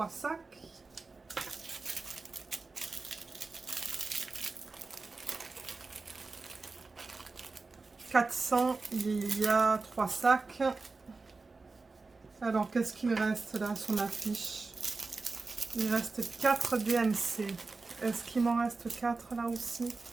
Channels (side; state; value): left; quieter; 3.9 dB